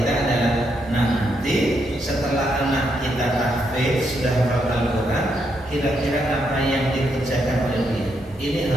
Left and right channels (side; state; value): both; normal; correlation 0.79